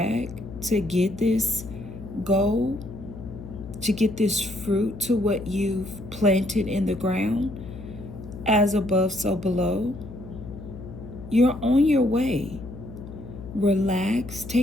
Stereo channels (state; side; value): noise; left; hum, 13 dB below the sound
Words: to get this goal, to get this fruit to what you've planted in the ground. As above, so below. You're on your way. Relax.